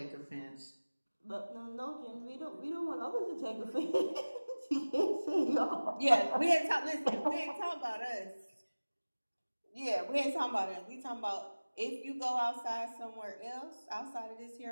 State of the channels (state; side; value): inverted; both; correlation -1.00